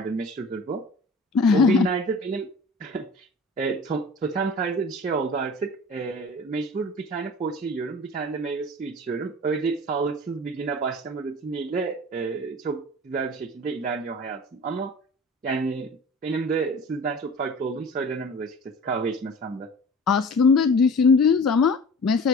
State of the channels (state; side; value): normal; both; correlation 0.41